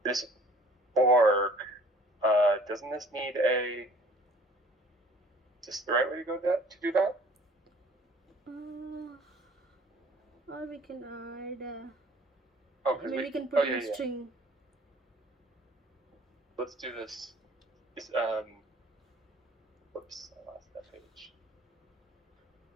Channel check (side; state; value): both; normal; correlation 0.52